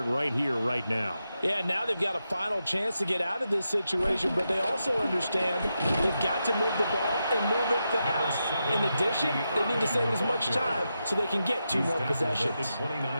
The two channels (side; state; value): both; inverted; correlation -0.87